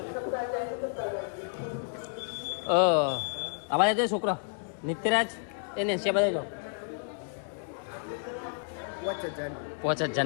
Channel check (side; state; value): right; silent; digital silence